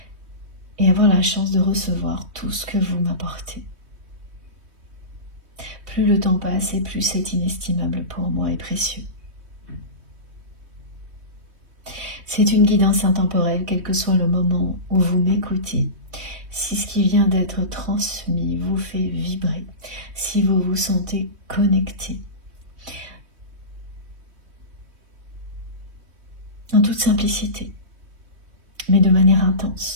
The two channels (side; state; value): left; late; 3.2 ms